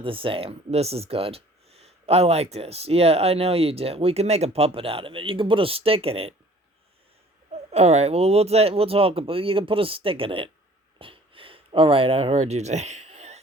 the same. This is good. I like this. Yeah, I know you did. We can make a puppet out of it. You can put a stick in it. All right. Well, we'll talk about. You can put a stick in it. All right. I heard you say.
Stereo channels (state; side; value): normal; both; correlation 0.52